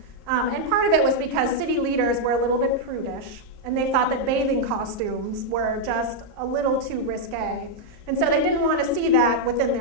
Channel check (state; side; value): late; left; 38 ms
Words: And part of it was because city leaders were a little bit prudish, and they thought that bathing costumes were just a little too risque. And so they didn't want to see that within